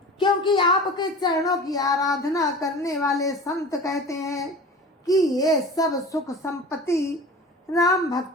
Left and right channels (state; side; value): normal; both; correlation 0.37